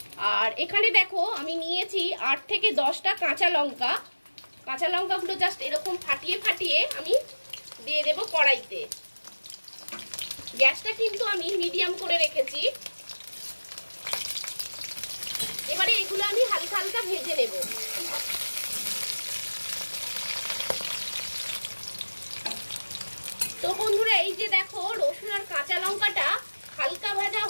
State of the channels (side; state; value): both; inverted; correlation -1.00